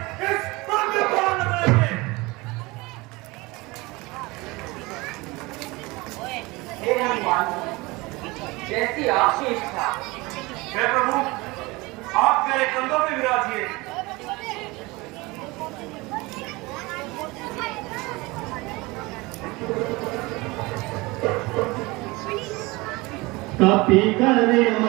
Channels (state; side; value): quieter; left; 23.1 dB